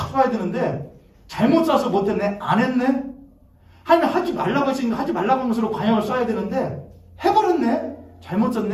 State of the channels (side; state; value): both; identical; correlation 1.00